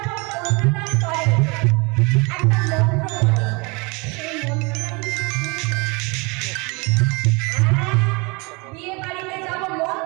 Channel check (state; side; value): quieter; left; 28.7 dB